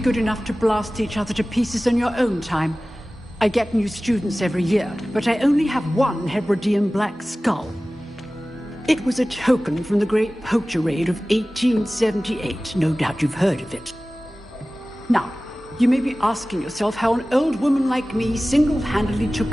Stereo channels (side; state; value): both; normal; correlation 0.97